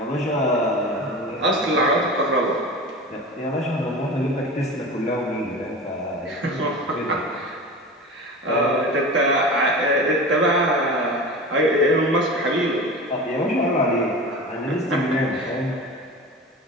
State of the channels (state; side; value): normal; both; correlation 0.32